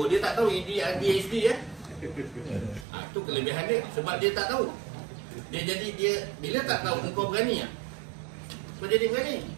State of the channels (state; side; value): drops out; left; at 2.9 s